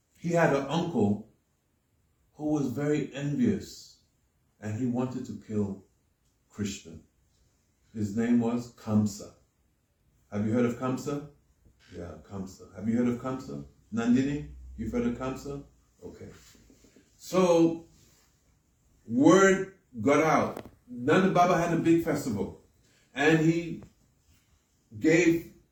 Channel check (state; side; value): identical; both; correlation 1.00